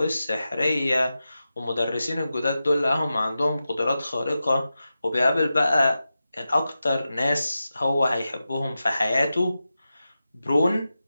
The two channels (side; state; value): both; inverted; correlation -0.92